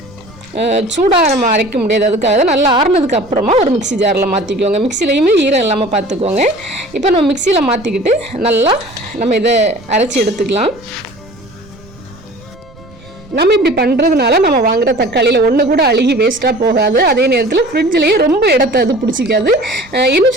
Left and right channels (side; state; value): right; noise; rumble, 24 dB below the sound